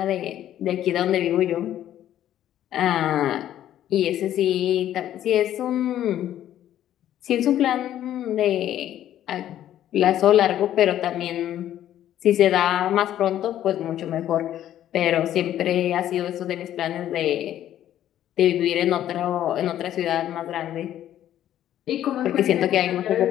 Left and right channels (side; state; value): right; quieter; 11.8 dB